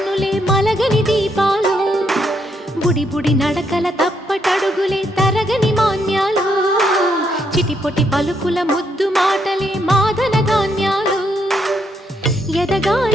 మలగని దీపాలు, బుడి బుడి నడకల తప్పటడుగులే తరగని మాన్యాలు, చిటిపొటి పలుకుల ముద్దు మాటలే మాధన ధాన్యాలు.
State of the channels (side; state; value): both; normal; correlation 0.76